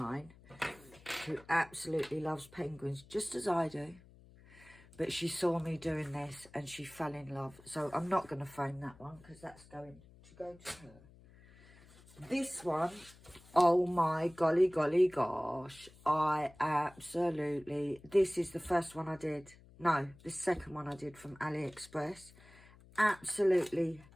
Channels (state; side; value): noise; left; hum, 23 dB below the sound